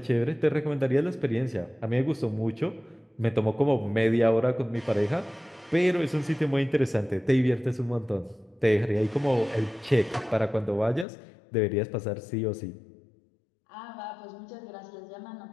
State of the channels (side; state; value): right; drops out; at 11.1 s